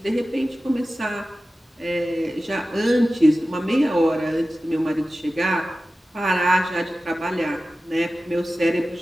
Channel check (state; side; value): normal; both; correlation 0.95